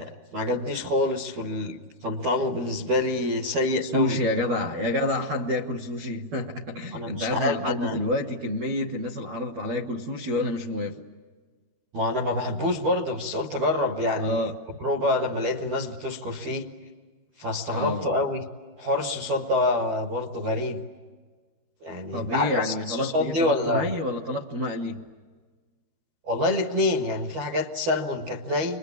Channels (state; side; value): late; left; 12 ms